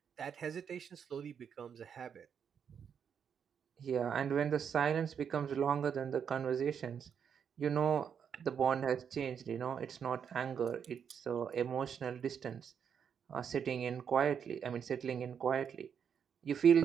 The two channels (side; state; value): left; quieter; 7.5 dB